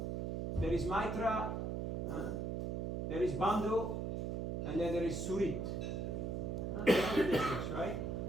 There is Maitra, there is Bandhu, and then there is Surit. That's the difference, right?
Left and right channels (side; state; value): right; noise; hum, 1 dB below the sound